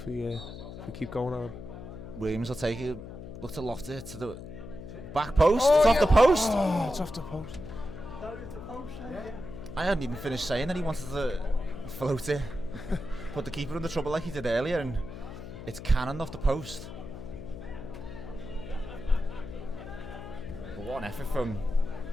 we keep going on. Williams will take it. Look to loft it to the back post. It's off the post. Oh, it's off the post. I hadn't even finished saying that he wanted to float it, put the keeper under trouble like he did earlier, and it's cannoned off the post. But what an effort from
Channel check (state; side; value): noise; left; hum, 11 dB below the sound